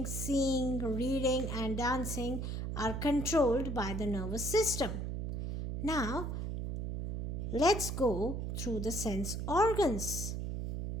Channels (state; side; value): noise; right; hum, 3 dB below the sound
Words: seeing, reading and dancing are controlled by the nervous system. Now, let's go through the sense organs.